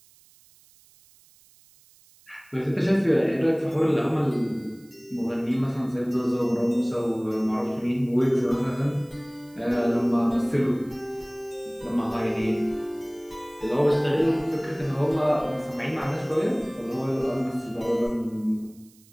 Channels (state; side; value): noise; right; hiss, 28 dB below the sound